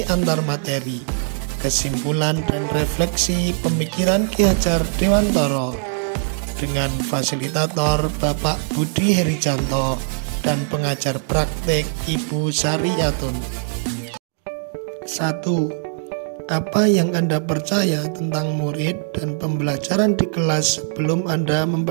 antar materi, kesimpulan dan refleksi pemikiran Ki Hajar Dewantara dengan fasilitator Bapak Budi Herijanto dan pengajar praktek Ibu Sariyatun. 1. Apa yang Anda percaya tentang murid dan pembelajaran di kelas sebelum Anda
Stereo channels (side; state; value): left; silent; digital silence